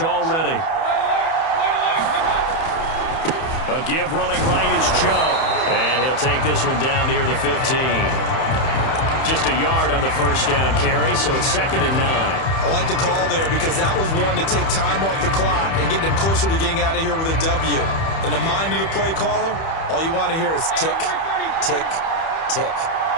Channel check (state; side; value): late; right; 31 ms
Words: already. A give running right is Chubb. And he'll take this one down near the 15. Just a yard on the 1st down carry, so it's 2nd and 9. I like the call there because that was one to take time off the clock and get them closer to getting out of here with a W. In the mind of the play caller, all you want to hear is tick, tick, tick.